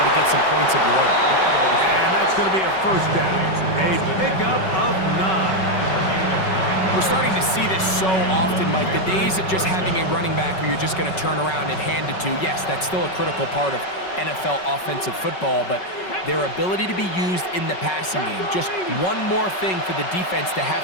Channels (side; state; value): right; late; 5.3 ms